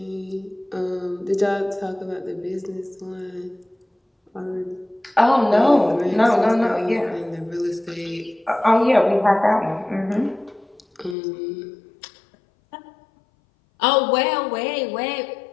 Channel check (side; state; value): right; drops out; at 11.2 s